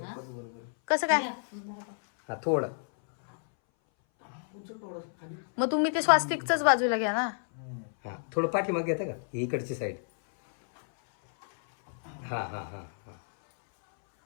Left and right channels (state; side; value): silent; right; 58 dB below the other